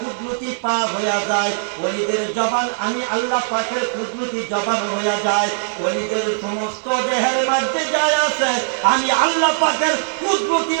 পা হইয়া যায়, ওলিদের জবান আমি আল্লাহ পাকের কুদরতি জবান হইয়া যায়, ওলিদের সমস্ত দেহের মধ্যে যায় আছে আমি আল্লাহ পাকের কুদরতি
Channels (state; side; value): silent; left; digital silence